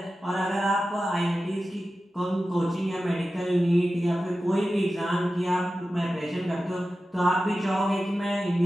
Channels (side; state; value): both; normal; correlation 0.94